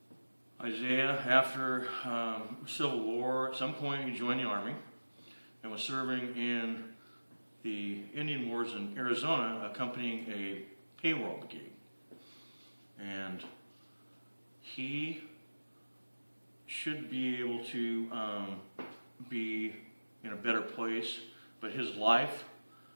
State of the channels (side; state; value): both; inverted; correlation -1.00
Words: Isaiah, after Civil War, at some point he joined the Army and was serving in the Indian Wars in Arizona, accompanying a payroll brigade. And he should be able to be in a better place, but his life,